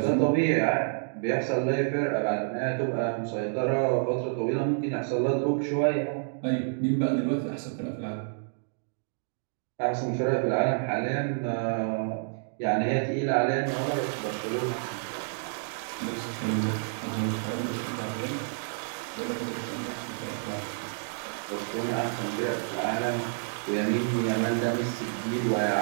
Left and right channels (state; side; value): silent; left; digital silence